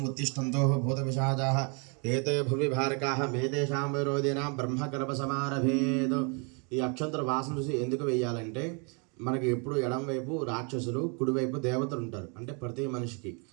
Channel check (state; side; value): quieter; left; 35.1 dB